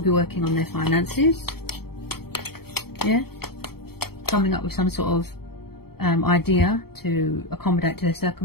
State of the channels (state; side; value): late; right; 0.95 ms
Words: be working on their finances. Yeah? Coming up with some sort of idea to accommodate to their